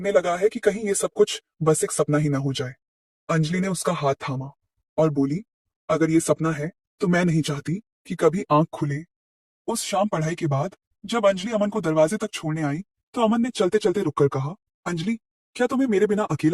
लगा है कि कहीं ये सब कुछ बस एक सपना ही ना हो जाए। अंजलि ने उसका हाथ थामा और बोली, अगर ये सपना है तो मैं नहीं चाहती कि कभी आंख खुले। उस शाम पढ़ाई के बाद जब अंजलि अमन को दरवाजे तक छोड़ने आई, तो अमन ने चलते चलते रुककर कहा, अंजलि, क्या तुम्हें मेरे बिना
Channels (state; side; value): identical; both; correlation 1.00